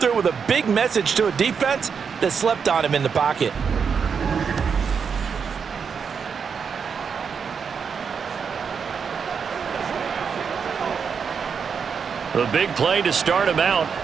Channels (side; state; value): left; quieter; 6.3 dB